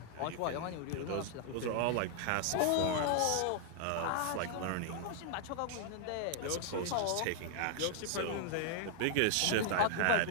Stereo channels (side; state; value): both; different; correlation 0.00